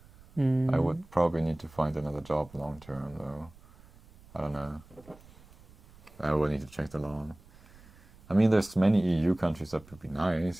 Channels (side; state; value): right; noise; rumble, 24 dB below the sound